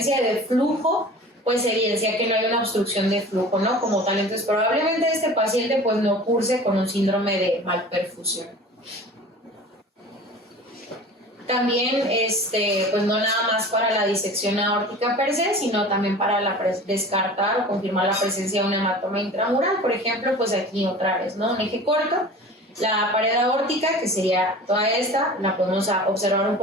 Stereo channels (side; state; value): both; normal; correlation 0.39